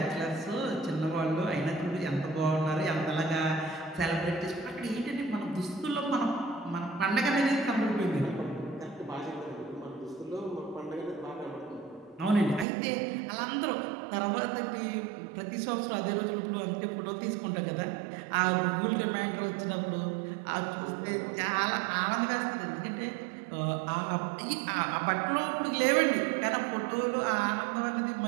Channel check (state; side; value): drops out; left; at 12.7 s